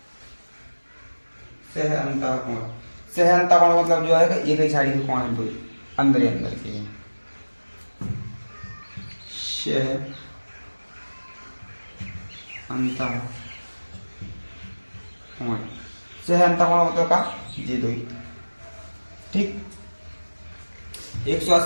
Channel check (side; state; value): both; inverted; correlation -1.00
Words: सह अंतःकोण। सह अंतःकोण मतलब जो है एक ही साइड के कोण है, दो अंदर ही अंदर के, सह अंतःकोण। सह अंतःकोण मतलब का ये दो ही, ठीक।